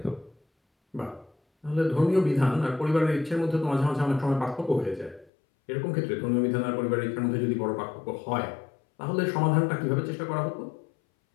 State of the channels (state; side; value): drops out; right; at 5.3 s